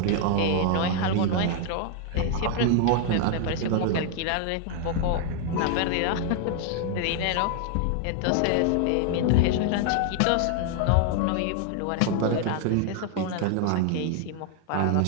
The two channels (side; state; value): both; different; correlation 0.00